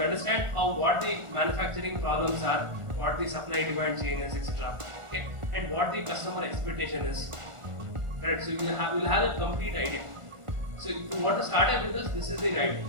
what the manufacturing problems are, what the supply demand chain is, etc. Okay? And what the customer expectation is. Correct? So you will have a complete idea. So if you want to start a business, this is the right way.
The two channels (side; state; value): left; late; 1.4 ms